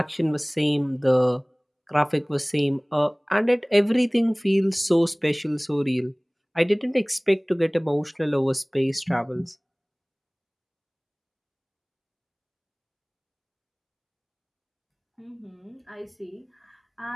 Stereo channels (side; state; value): both; identical; correlation 1.00